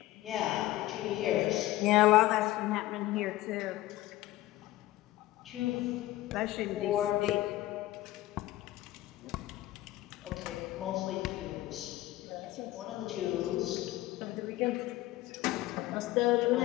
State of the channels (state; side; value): quieter; right; 16.5 dB